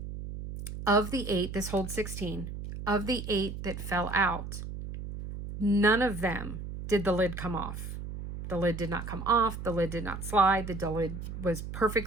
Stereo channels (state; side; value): noise; right; hum, 8 dB below the sound